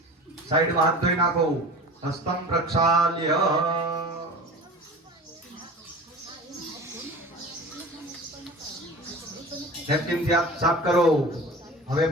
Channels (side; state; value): both; normal; correlation 0.36